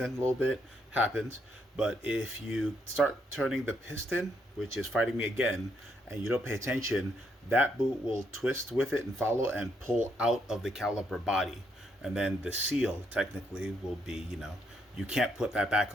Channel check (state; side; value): normal; both; correlation 0.75